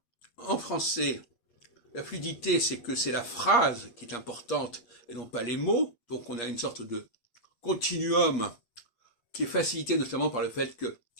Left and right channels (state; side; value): late; right; 8.5 ms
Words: en français, la fluidité, c'est que c'est la phrase qui est importante et non pas les mots. Donc on a une sorte de continuum qui est facilité notamment par le fait que